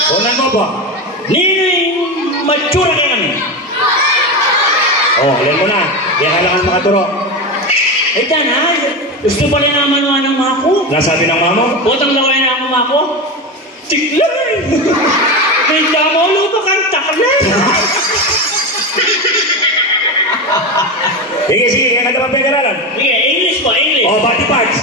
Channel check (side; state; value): both; normal; correlation 0.19